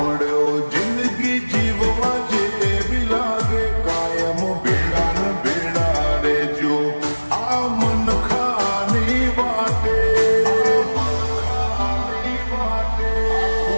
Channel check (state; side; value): inverted; both; correlation -1.00